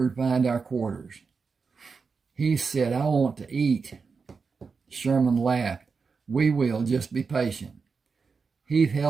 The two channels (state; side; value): quieter; left; 5.0 dB